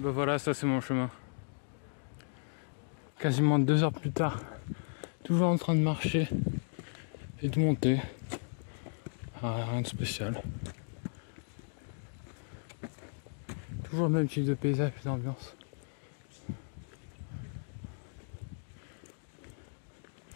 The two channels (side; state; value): right; silent; digital silence